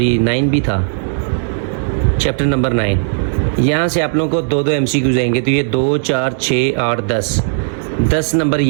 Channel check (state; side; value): silent; left; digital silence